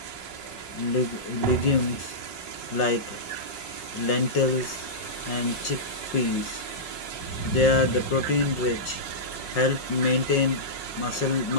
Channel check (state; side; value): late; right; 5.5 ms